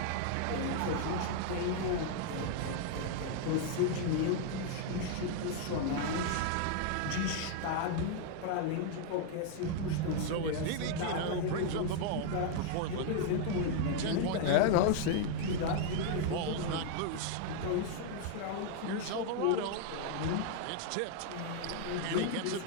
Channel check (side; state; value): both; different; correlation 0.00